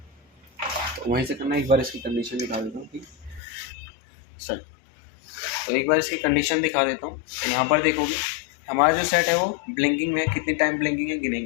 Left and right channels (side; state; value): right; drops out; at 3.4 s